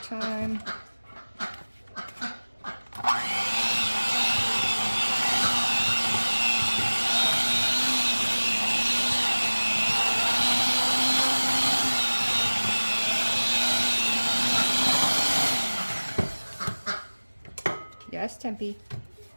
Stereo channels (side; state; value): both; inverted; correlation -1.00